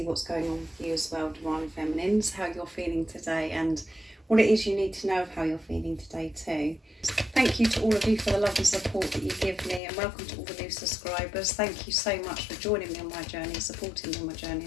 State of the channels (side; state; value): right; drops out; at 9.8 s